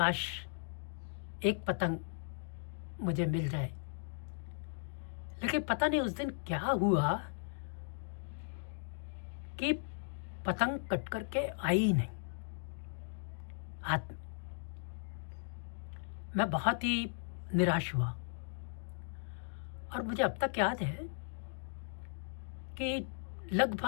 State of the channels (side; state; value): right; silent; digital silence